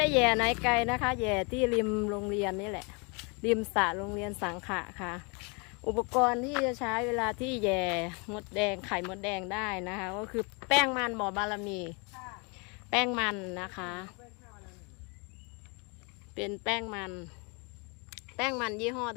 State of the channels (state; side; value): quieter; right; 32.3 dB